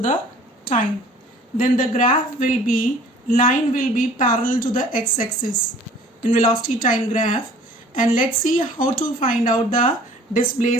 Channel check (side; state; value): both; normal; correlation 0.51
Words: the time. Then the graph will be, line will be parallel to the x-axis in velocity time graph. And let's see how to find out the